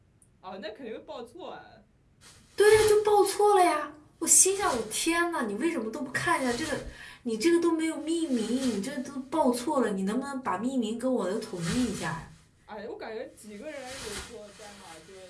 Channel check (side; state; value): both; identical; correlation 1.00